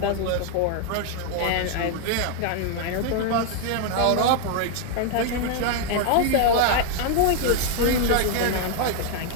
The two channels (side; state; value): both; different; correlation 0.00